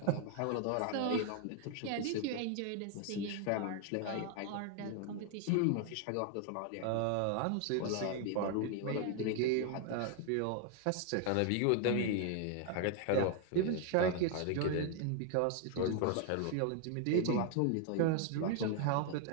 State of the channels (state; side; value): different; both; correlation 0.00